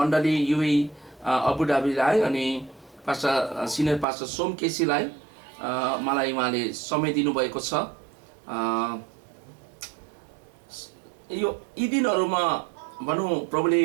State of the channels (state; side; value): drops out; left; at 4.0 s